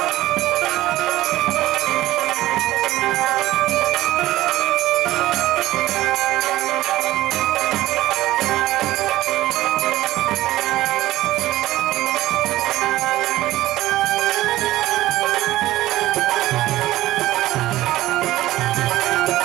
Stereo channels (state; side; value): quieter; left; 16.0 dB